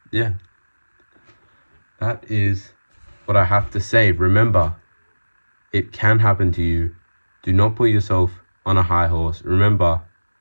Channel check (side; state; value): both; inverted; correlation -1.00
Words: yeah, that is what I have to say. Remember, it can happen to you. Do not put yourself on a high horse. Remember,